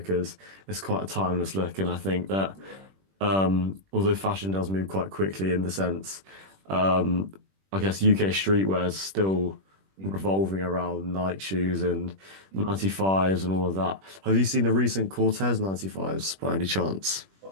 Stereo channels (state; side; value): late; left; 21 ms